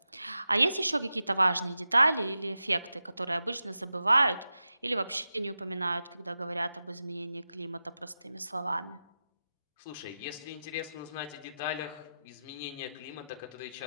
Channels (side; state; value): both; inverted; correlation -0.92